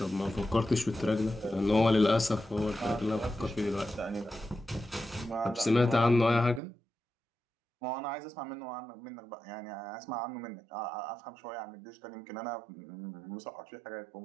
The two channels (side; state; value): left; drops out; at 6.6 s